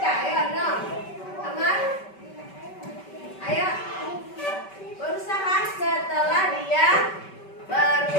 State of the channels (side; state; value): right; late; 5.2 ms